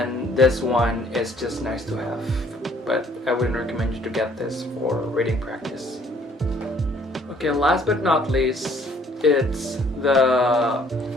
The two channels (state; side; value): normal; both; correlation 0.61